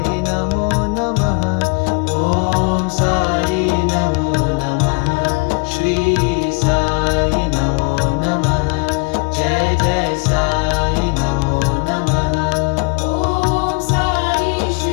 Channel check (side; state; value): right; quieter; 30.6 dB